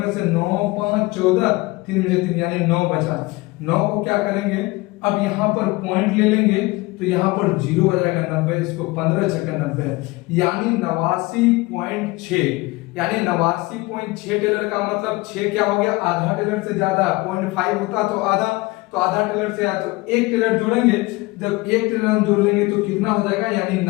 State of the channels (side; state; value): right; quieter; 22.4 dB